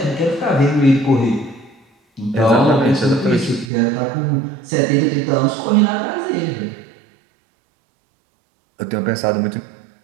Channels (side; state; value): left; drops out; at 3.7 s